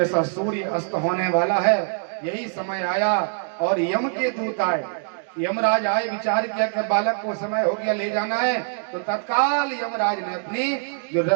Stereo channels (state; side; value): silent; left; digital silence